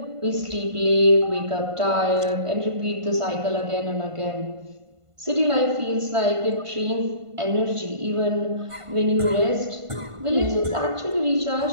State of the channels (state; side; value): late; left; 1.5 ms